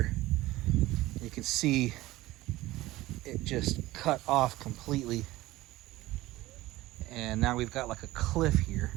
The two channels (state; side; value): quieter; left; 17.6 dB